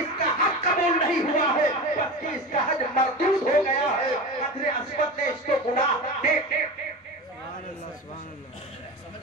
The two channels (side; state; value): both; normal; correlation 0.27